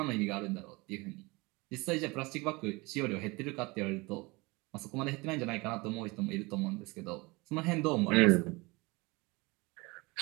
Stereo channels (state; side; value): quieter; left; 24.8 dB